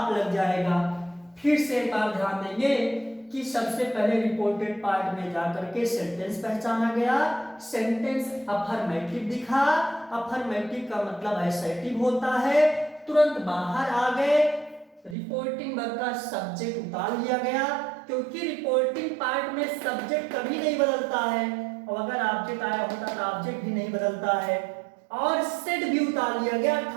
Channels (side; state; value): left; drops out; at 15.2 s